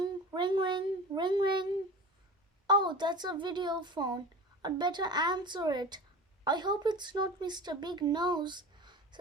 ring, ring, ring, ring. Oh, that's a video phone. I'd better answer it. I hope it's not Mr. Big Nose,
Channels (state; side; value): normal; both; correlation 0.34